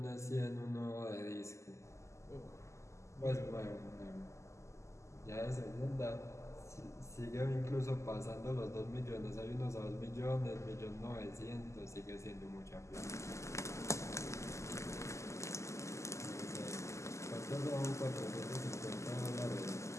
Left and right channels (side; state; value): right; late; 0.14 ms